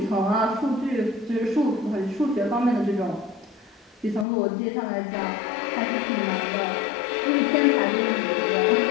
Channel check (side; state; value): right; drops out; at 4.2 s